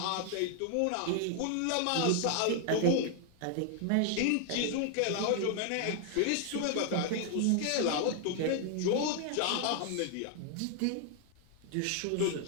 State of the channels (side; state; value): both; different; correlation 0.00